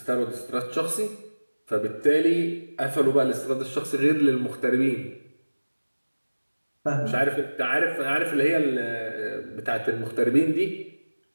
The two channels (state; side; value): inverted; both; correlation -1.00